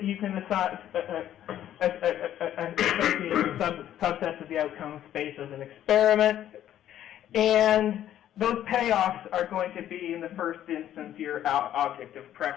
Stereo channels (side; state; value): right; quieter; 11.5 dB